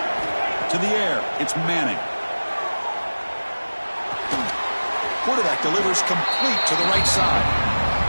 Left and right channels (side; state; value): both; inverted; correlation -1.00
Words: To the air, it's Manning. Quarterback delivers complete to the right side.